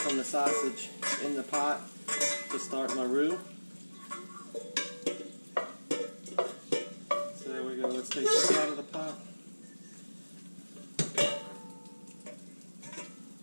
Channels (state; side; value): inverted; both; correlation -1.00